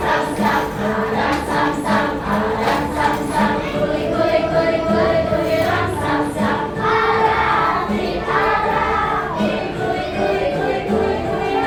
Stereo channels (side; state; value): both; identical; correlation 1.00